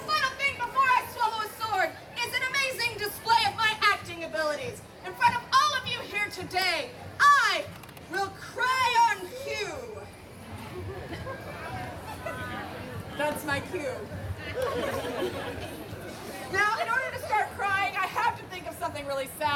final thing before I swallow a sword is an amazing display of my acting abilities. In front of all of you here today, I will cry on cue. That's my cue. Now, in order to start crying, I have to think of something really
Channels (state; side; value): identical; both; correlation 1.00